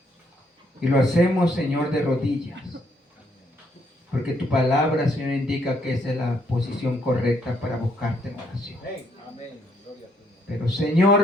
Y lo hacemos, Señor, de rodillas. Porque tu palabra, Señor, indica que esa es la posición correcta para buscarte en oración. Pero,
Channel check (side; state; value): both; normal; correlation 0.71